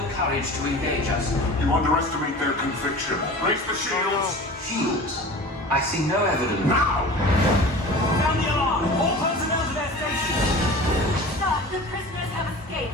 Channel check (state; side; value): normal; both; correlation 0.38